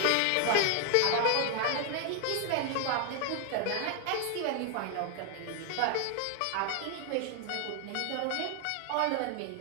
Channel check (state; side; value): different; both; correlation 0.00